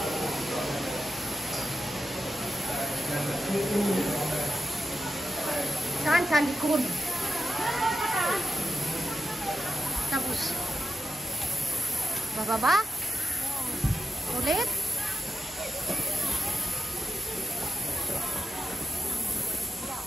Saan sa likod? Tapos bababa? Ulit?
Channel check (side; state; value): both; normal; correlation 0.89